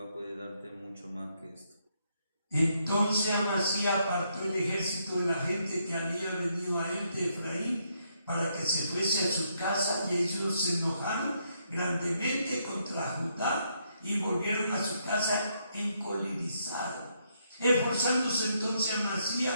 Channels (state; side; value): inverted; both; correlation -0.76